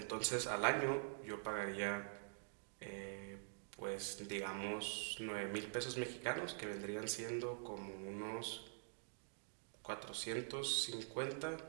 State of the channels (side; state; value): left; silent; digital silence